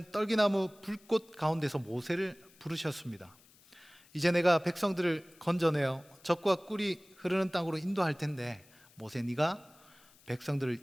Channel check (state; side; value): noise; left; hiss, 27 dB below the sound